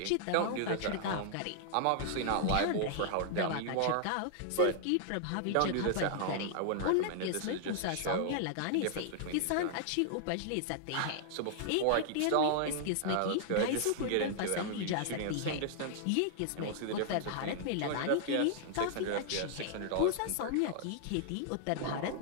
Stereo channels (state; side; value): different; both; correlation -0.01